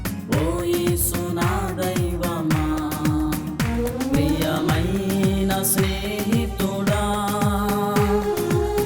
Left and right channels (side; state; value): both; identical; correlation 1.00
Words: ఓ యేసు నా దైవమా, ప్రియమైన స్నేహితుడా,